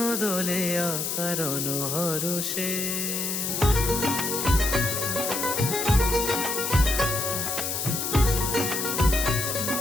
দোলে অকারণ হরষে।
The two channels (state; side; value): noise; left; hiss, 2 dB below the sound